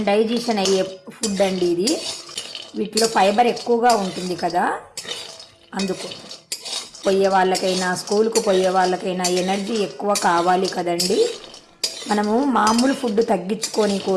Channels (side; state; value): both; identical; correlation 1.00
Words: డైజెషన్ అయ్యే ఫుడ్ అండి ఇది. వీటిలో ఫైబర్ ఎక్కువగా ఉంటుంది కదా, అందుకు పోయే వాళ్ళకైనా స్కూల్కు పోయే వాళ్ళకైనా ఎనర్జీ ఎక్కువ కావాలి కదండి. మనము మామూలు ఫుడ్ తగ్గించుకొని